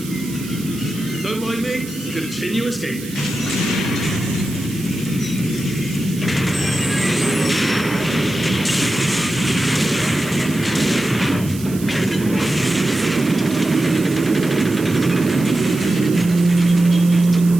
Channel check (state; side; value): noise; right; hiss, 15 dB below the sound